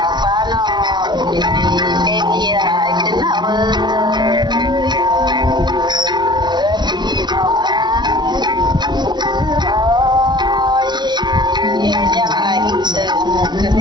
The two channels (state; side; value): late; left; 0.21 ms